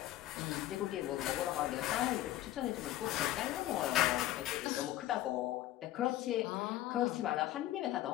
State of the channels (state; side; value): quieter; right; 14.8 dB